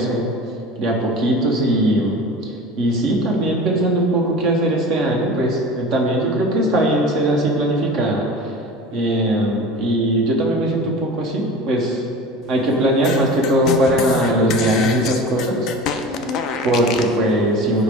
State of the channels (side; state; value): both; normal; correlation 0.36